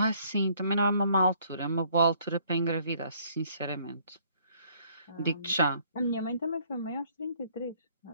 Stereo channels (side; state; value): both; inverted; correlation -0.62